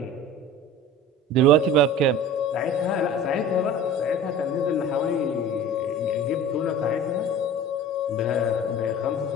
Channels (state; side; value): normal; both; correlation 0.38